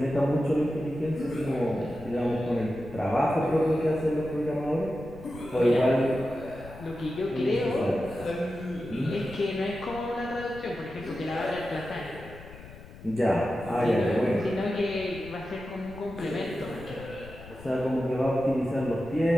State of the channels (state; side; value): noise; left; rumble, 17 dB below the sound